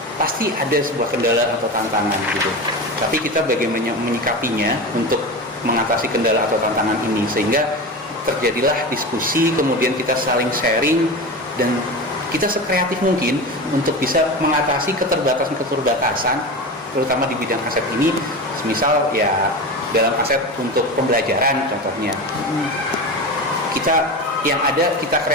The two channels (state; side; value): normal; both; correlation 0.25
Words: pasti ada sebuah kendala atau tantangan gitu. Tapi kita bagaimana menyikapinya untuk mengatasi kendala atau tantangan ini sehingga terjadilah diskusi, kemudian kita saling sharing dan kita sekreatif mungkin untuk bisa mengatasi keterbatasan terutama di bidang aset ini. Misal ya dalam aset untuk pembelajaran contohnya. Kita yang ada kita